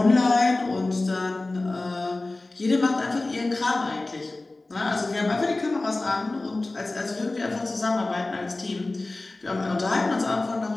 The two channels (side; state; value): right; quieter; 3.0 dB